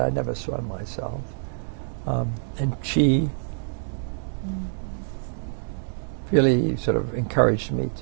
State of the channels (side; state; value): left; silent; digital silence